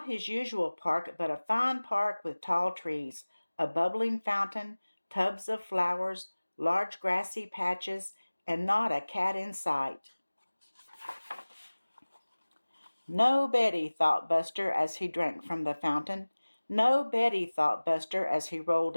his usual park, but a fine park with tall trees, a bubbling fountain, tubs of flowers, large grassy patches, and not a cat in sight. No Betty, thought Buster as he drank from the fountain. No Betty, thought Buster as he rolled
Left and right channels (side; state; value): both; inverted; correlation -1.00